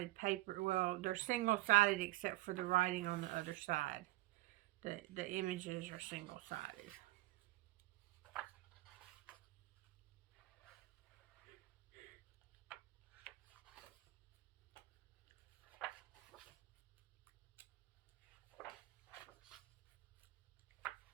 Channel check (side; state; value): left; quieter; 18.6 dB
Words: paper. Well, they're single-sided except for the writing on the other side. The images are single-sided.